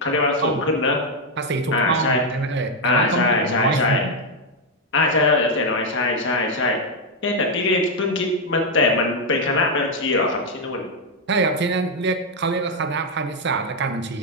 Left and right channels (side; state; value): both; normal; correlation 0.01